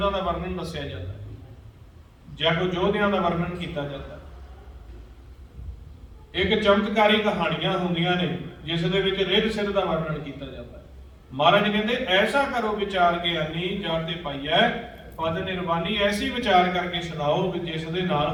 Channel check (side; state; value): both; identical; correlation 1.00